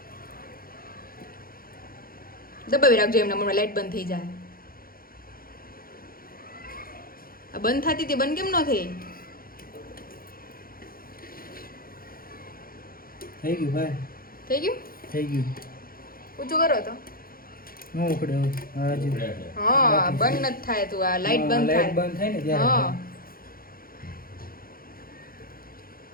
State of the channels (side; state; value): right; late; 0.42 ms